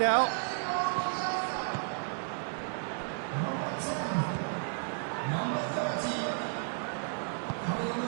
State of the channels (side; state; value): left; silent; 56 dB below the other